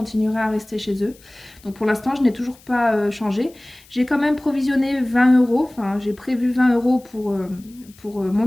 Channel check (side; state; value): left; noise; hiss, 26 dB below the sound